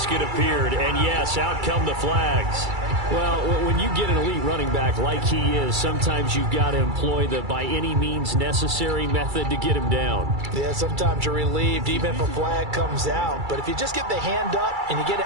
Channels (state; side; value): late; left; 2.3 ms